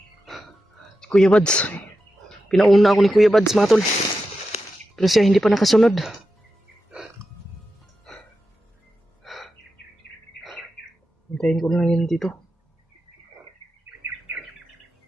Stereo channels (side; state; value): both; normal; correlation 0.90